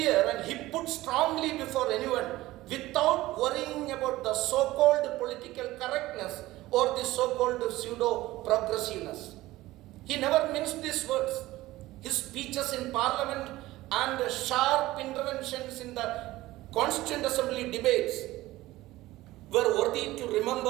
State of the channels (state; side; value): quieter; left; 17.4 dB